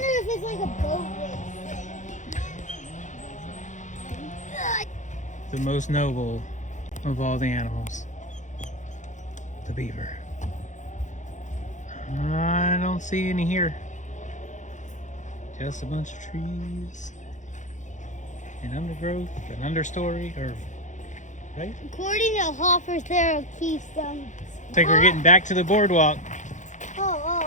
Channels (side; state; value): right; late; 0.35 ms